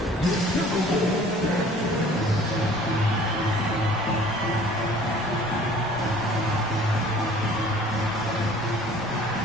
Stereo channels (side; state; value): both; normal; correlation 0.51